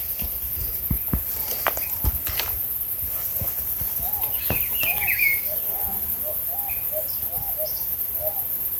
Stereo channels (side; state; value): both; identical; correlation 1.00